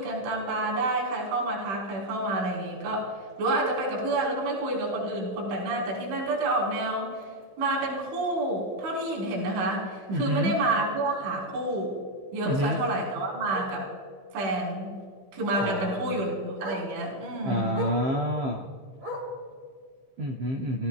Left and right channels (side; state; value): left; late; 15 ms